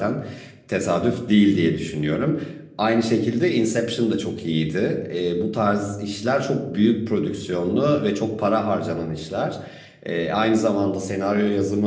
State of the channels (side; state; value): both; identical; correlation 1.00